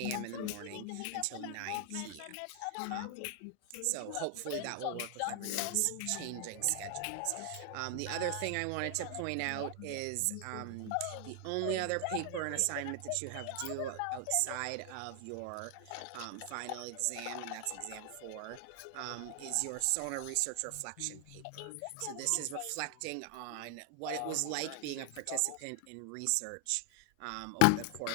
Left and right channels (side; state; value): both; different; correlation 0.00